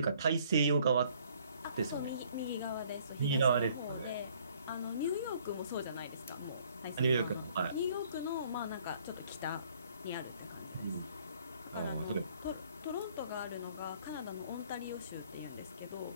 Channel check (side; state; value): both; inverted; correlation -0.61